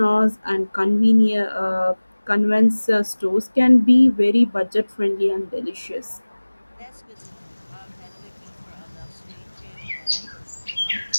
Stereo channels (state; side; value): inverted; both; correlation -1.00